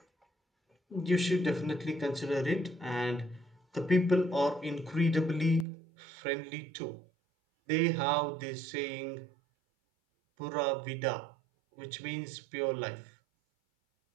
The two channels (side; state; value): left; drops out; at 5.7 s